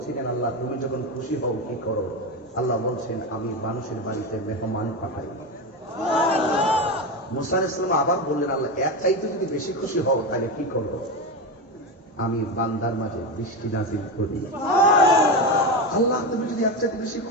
আল্লাহ তুমি যখন খুশি হও কি করো? আল্লাহ বলছেন, আমি মানুষের বাড়িতে মেহমান পাঠাই। মুসা ইসলাম আবার বললেন, আল্লাহ এক চাইতে যদি বেশি খুশি হও তাহলে কি করো? আমি বান্দার মাঝে বৃষ্টি নাজিল করি। আল্লাহ তুমি যদি এক চাইতে বেশি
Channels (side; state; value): both; normal; correlation 0.16